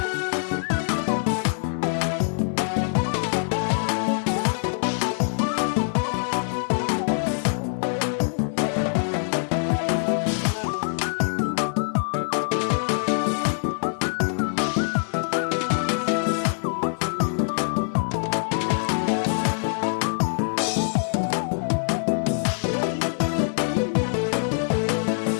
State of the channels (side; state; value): right; silent; digital silence